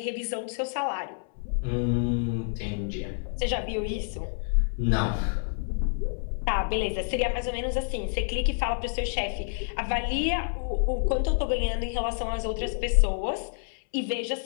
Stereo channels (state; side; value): silent; right; 59 dB below the other